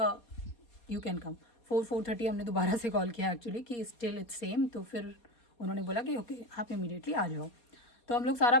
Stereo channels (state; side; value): late; right; 4.2 ms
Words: यू कैन कम। 4-4:30 हमने दोबारा से कॉल किया एक्चुअली कि स्टिल इट्स सेम। तो फिर उन्होंने बोला कि ओके आप इमीडिएटली आ जाओ। तो हम लोग सारा